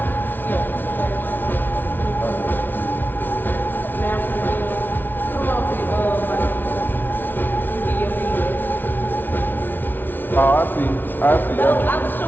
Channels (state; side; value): late; right; 0.092 ms